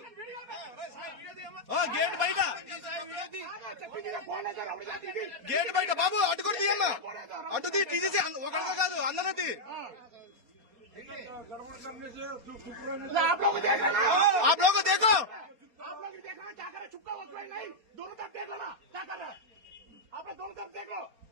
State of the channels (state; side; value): late; left; 4.2 ms